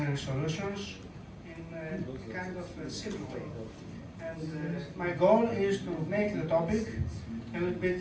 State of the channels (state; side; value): identical; both; correlation 1.00